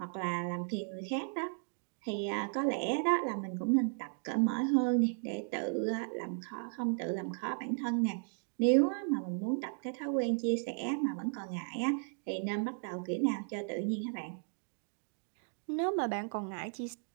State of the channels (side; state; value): left; silent; 54 dB below the other